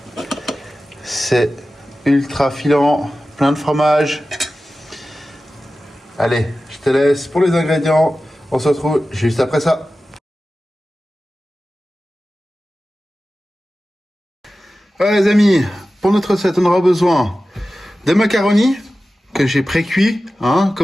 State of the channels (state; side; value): normal; both; correlation 0.95